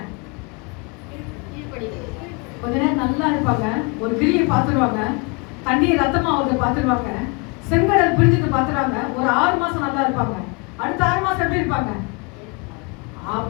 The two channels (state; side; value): quieter; right; 30.2 dB